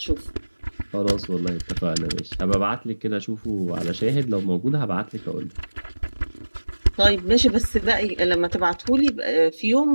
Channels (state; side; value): inverted; both; correlation -1.00